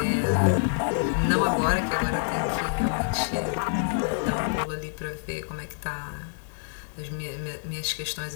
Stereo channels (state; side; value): silent; right; digital silence